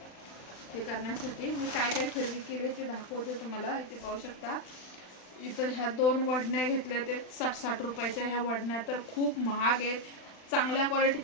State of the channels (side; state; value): right; late; 39 ms